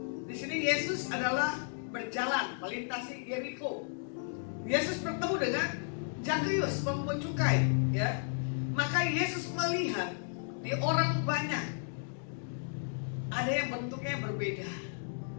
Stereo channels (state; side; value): silent; right; digital silence